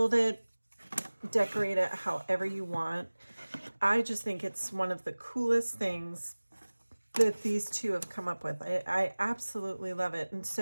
it, decorate it however you want. I just think it's one of the coolest things that these two have come up with. I absolutely love it. And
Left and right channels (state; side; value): inverted; both; correlation -1.00